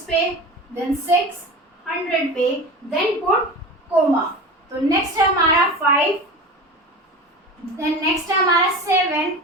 पे, देन 6 100 पे, देन पुट कोमा। तो नेक्स्ट है हमारा 5, देन नेक्स्ट है हमारा 7,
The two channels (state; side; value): normal; both; correlation 0.31